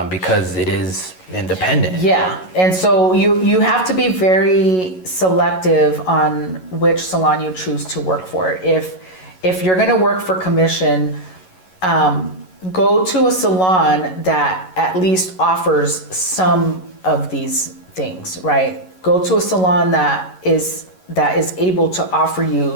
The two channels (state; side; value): late; right; 11 ms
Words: because it is independent. Yeah, and so you have to be very selective on which salon you choose to work for. If you're going to work for commission, go to a salon that at least offers some of these things, right? Go to a salon that is able to offer